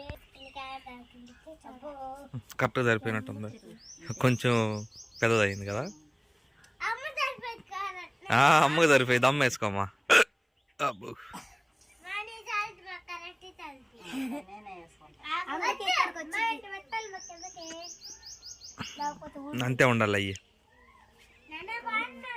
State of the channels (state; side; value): identical; both; correlation 1.00